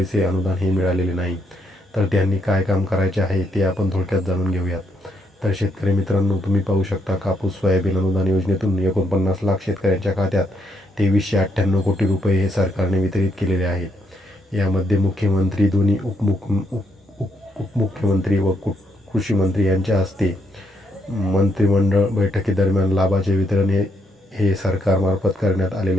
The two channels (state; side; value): normal; both; correlation 0.75